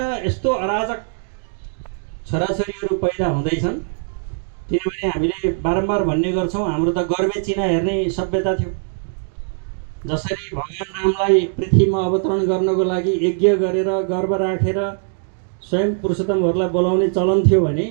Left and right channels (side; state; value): left; silent; digital silence